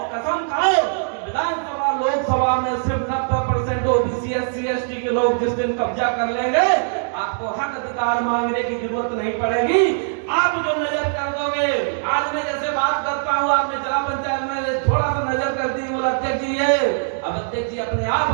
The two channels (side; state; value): left; silent; digital silence